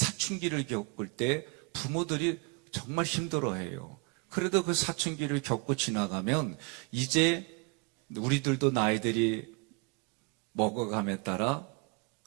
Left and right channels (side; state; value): left; quieter; 30.6 dB